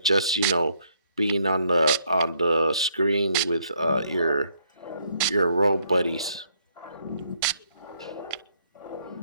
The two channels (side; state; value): both; inverted; correlation -0.70